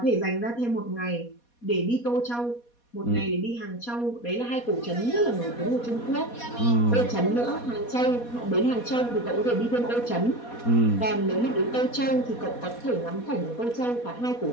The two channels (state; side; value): late; right; 4.2 ms